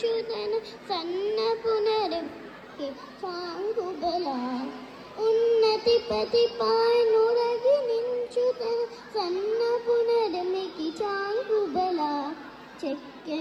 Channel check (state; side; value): identical; both; correlation 1.00